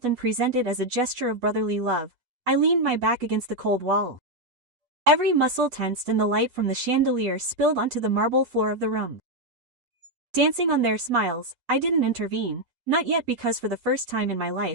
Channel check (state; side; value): late; left; 8.2 ms